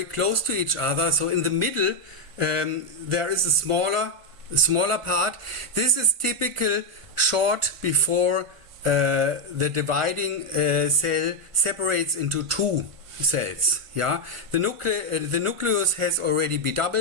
close to each other. So in the middle there is a smaller part. This is typical short before the dividing cell separates into 2 cells. Yeah, the nucleus has already been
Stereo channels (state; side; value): late; left; 1.5 ms